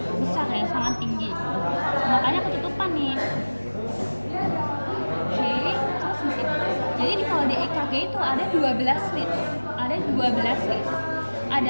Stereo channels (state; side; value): inverted; both; correlation -1.00